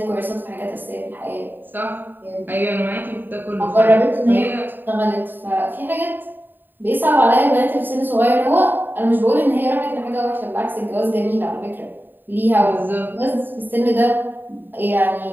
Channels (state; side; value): late; left; 0.092 ms